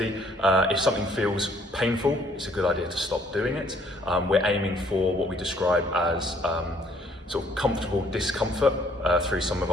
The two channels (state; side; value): normal; both; correlation 0.63